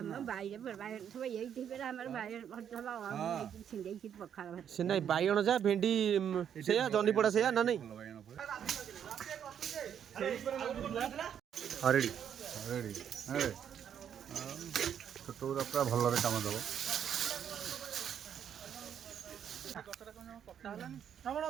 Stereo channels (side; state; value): left; quieter; 8.8 dB